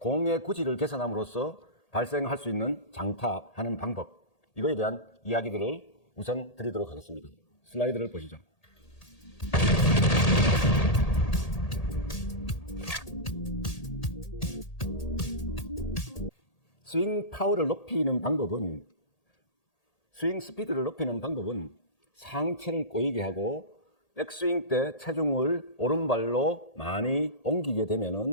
구질을 개선함으로써 발생할 수 있는 장타하는 방법, 이거에 대한 이야기들을 우선 드리도록 하겠습니다. 슬라이드를 보시죠. 스윙 파워를 높이는 방법은, 스윙 스피드를 높이는 방법은 상체를 꼬이게 하고 백스윙 때 체중을 오른발로 많이 옮기게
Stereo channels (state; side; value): late; right; 1.8 ms